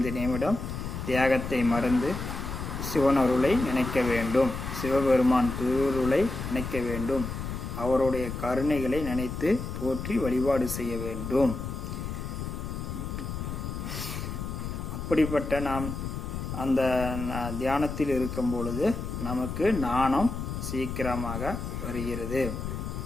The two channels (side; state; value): left; noise; rumble, 5 dB below the sound